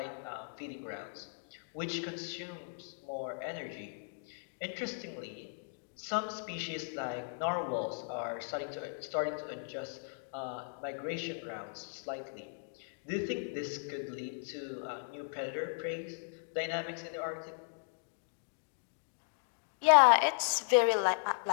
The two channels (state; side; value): silent; right; digital silence